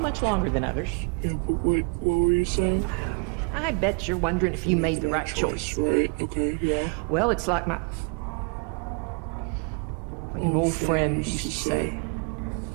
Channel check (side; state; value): left; quieter; 36.4 dB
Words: longer than others. Yeah, but what were you saying? I bet you're wondering if you made the right choice. Right, okay, yeah. Well, it's like an old friend used to say,